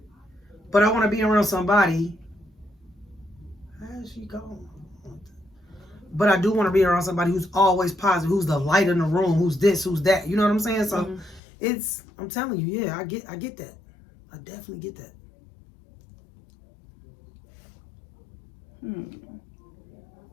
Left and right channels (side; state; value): right; drops out; at 11.4 s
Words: But I want to be around somebody. How's she going? But I do want to be around somebody who's always positive, who's the light in the room, who's this, who's that. You know what I'm saying? So I'm telling you, yeah, I get that. I definitely get that.